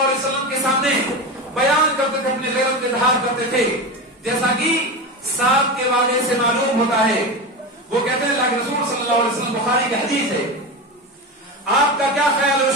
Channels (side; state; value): both; normal; correlation 0.22